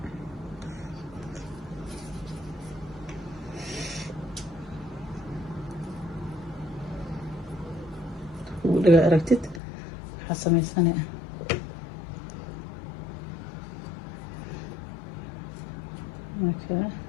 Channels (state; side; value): drops out; right; at 9.6 s